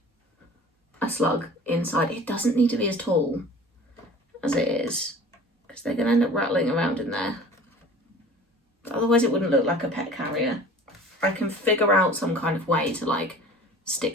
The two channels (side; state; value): both; normal; correlation 0.44